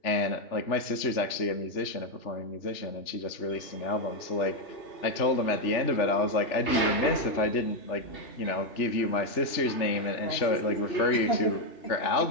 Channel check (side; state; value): right; late; 3.4 ms